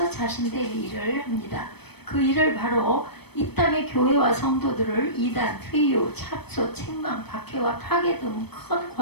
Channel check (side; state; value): right; late; 0.97 ms